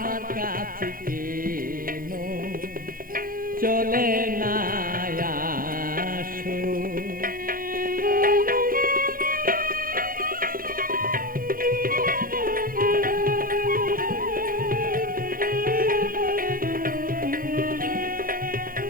কাছে কেন চলে না আসো।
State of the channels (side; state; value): left; late; 0.41 ms